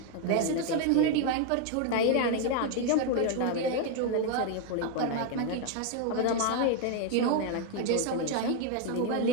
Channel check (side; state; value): both; different; correlation 0.01